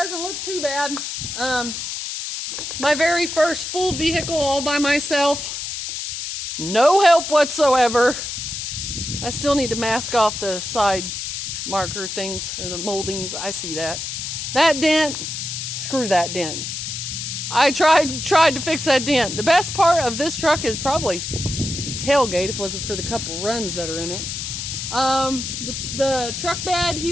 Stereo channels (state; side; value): noise; left; hiss, 5 dB below the sound